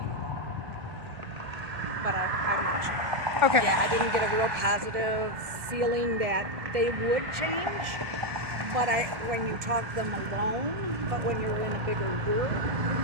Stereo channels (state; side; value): late; left; 1.6 ms